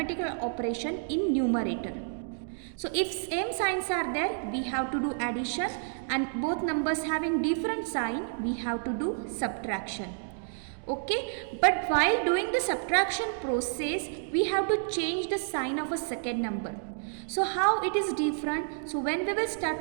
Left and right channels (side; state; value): left; silent; digital silence